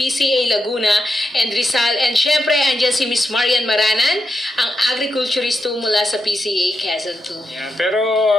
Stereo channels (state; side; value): normal; both; correlation 0.86